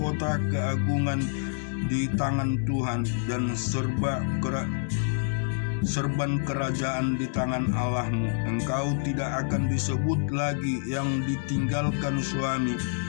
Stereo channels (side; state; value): right; silent; digital silence